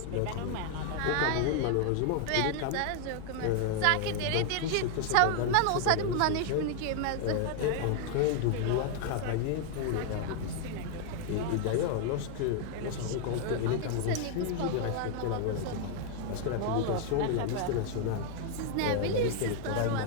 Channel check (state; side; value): different; both; correlation 0.00